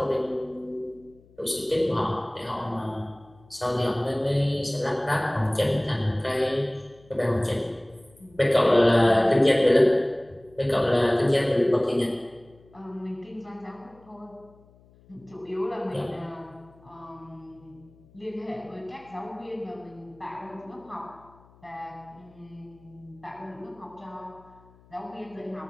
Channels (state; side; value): noise; left; hum, 27 dB below the sound